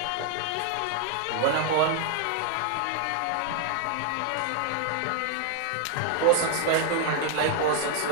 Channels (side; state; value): both; different; correlation 0.00